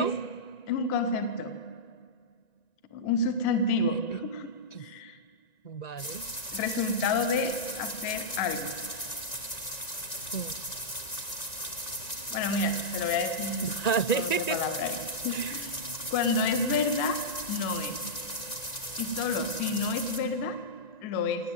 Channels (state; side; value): late; right; 1.9 ms